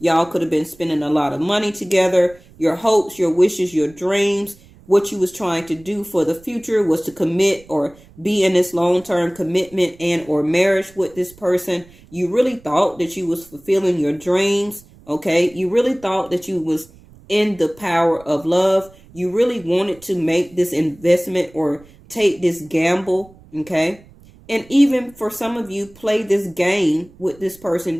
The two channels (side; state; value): right; noise; rumble, 25 dB below the sound